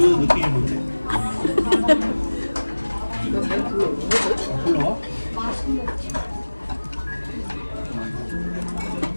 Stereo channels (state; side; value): inverted; both; correlation -1.00